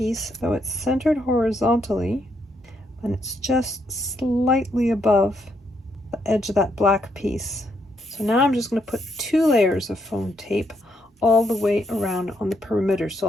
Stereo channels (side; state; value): both; normal; correlation 0.76